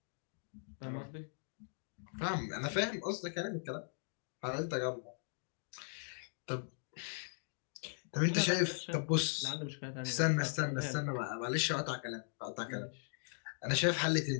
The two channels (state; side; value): silent; right; digital silence